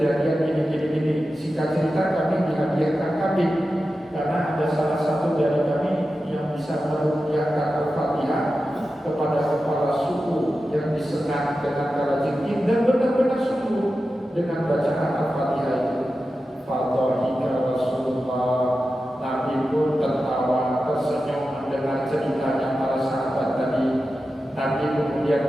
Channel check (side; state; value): both; normal; correlation 0.92